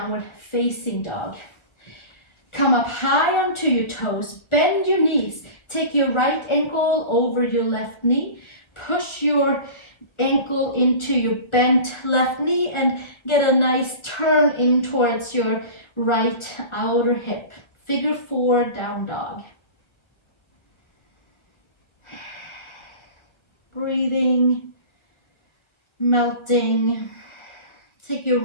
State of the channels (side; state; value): right; late; 1.3 ms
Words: facing dog. Come up high onto your toes, bend your knees, take your right ankle over your left knee, push your ankle into your bent left knee and get a nice turn in towards your right outer hip. Figure 4 down dog. Breathing, melting. Take your